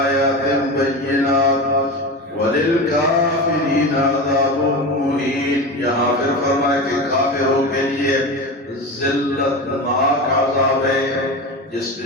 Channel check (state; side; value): normal; both; correlation 0.25